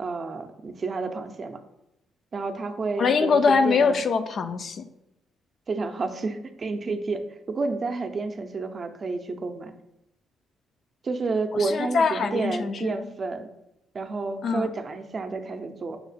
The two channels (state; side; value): normal; both; correlation 0.81